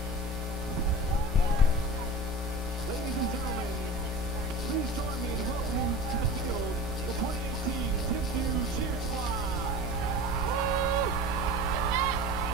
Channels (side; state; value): both; normal; correlation 0.34